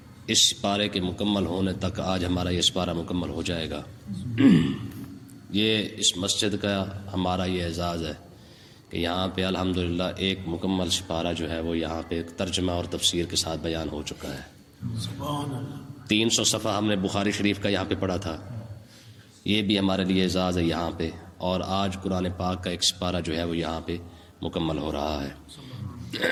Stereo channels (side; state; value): both; identical; correlation 1.00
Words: اس پارے کے مکمل ہونے تک آج ہمارا یہ سپارہ مکمل ہو جائے گا۔ یہ اس مسجد کا ہمارا یہ اعزاز ہے کہ یہاں پہ الحمدللہ ایک مکمل سپارہ جو ہے وہ یہاں پہ ترجمہ اور تفسیر کے ساتھ بیان ہو چکا ہے۔ 300 صفحہ ہم نے بخاری شریف کا یہاں پہ پڑھا تھا، یہ بھی ہمارے لیے اعزاز ہے یہاں پہ، اور آج قرآن پاک کا ایک سپارہ جو ہے وہ یہاں پہ مکمل ہو رہا ہے۔